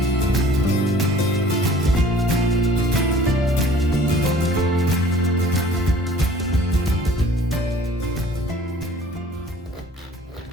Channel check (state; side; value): normal; both; correlation 0.50